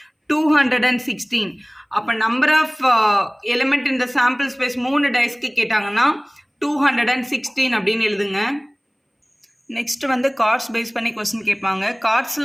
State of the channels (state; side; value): identical; both; correlation 1.00